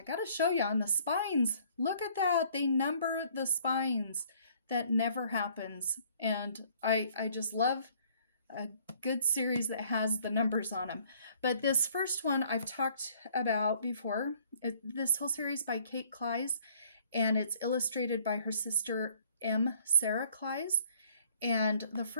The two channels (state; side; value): inverted; both; correlation -0.60